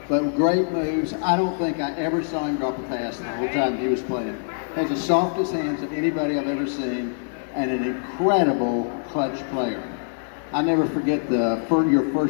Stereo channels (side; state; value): right; silent; digital silence